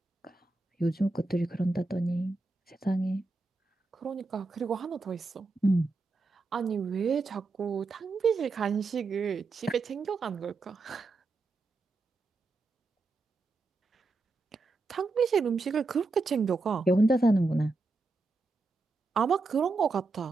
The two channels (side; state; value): left; quieter; 3.5 dB